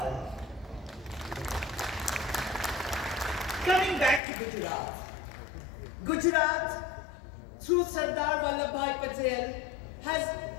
Coming back to Gujarat. Gujarat, through Sardar Vallabhbhai Patel, has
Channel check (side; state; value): right; drops out; at 4.2 s